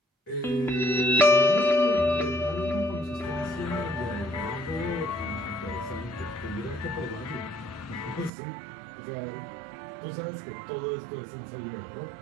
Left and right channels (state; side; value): drops out; left; at 8.3 s